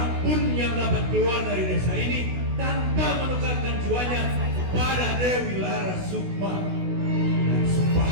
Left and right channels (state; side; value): late; left; 16 ms